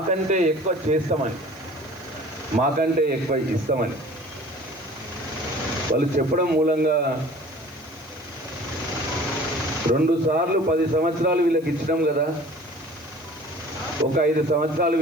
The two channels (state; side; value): noise; right; hiss, 26 dB below the sound